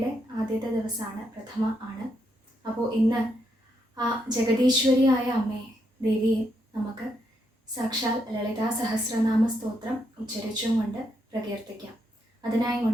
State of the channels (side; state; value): both; normal; correlation 0.78